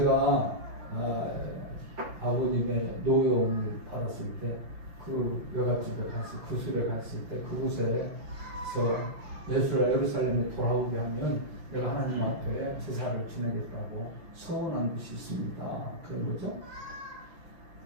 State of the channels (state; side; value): late; left; 5.7 ms